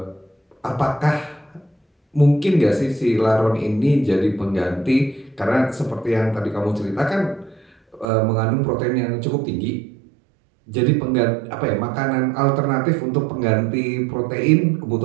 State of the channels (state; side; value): drops out; left; at 8.1 s